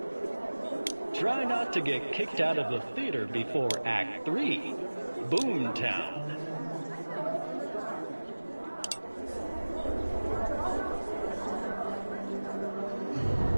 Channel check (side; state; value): both; inverted; correlation -1.00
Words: Try not to get kicked out of the theater before Act 3, Boomtown.